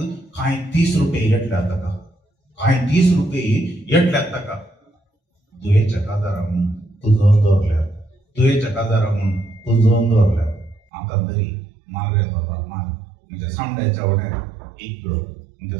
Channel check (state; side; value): drops out; left; at 10.8 s